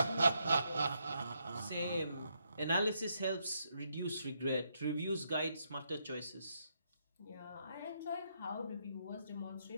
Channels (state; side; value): inverted; both; correlation -0.78